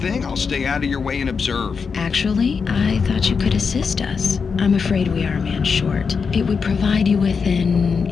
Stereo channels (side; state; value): right; quieter; 5.6 dB